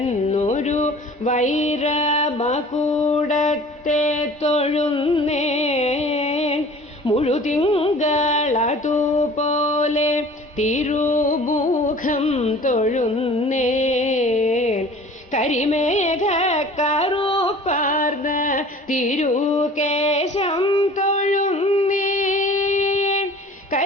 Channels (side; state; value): both; normal; correlation 0.46